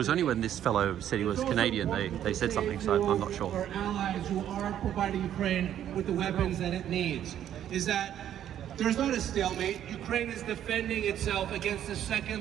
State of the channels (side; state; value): left; quieter; 10.7 dB